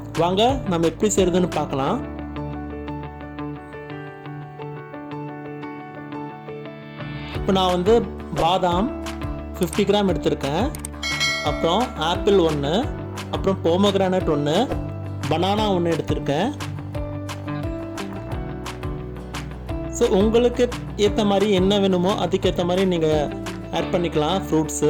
வாங்க நம்ம எப்படி செய்யறதுன்னு பார்க்கலாம். இப்போ நான் பாதாம் 50 கிராம் எடுத்திருக்கேன். அப்புறம் ஆப்பிள் 1, அப்புறம் போமோகிரானேட் 1, பனானா 1 எடுத்திருக்கேன். ஸோ உங்களுக்கு ஏற்ற மாதிரி என்ன வேணுமோ அதுக்கேற்ற மாதிரி நீங்கள் ஆட் பண்ணிக்கலாம் ஃப்ரூட்ஸு.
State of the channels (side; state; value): both; identical; correlation 1.00